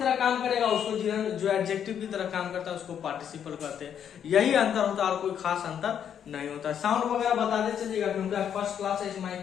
काम करेगा उसको जिरंड, जो एडजेक्टिव की तरह काम करता है उसको पार्टिसिपल कहते हैं। यही अंतर होता है और कोई खास अंतर नहीं होता है। साउंड वगैरह बताते चलिएगा क्योंकि फर्स्ट क्लास है इस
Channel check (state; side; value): quieter; right; 8.8 dB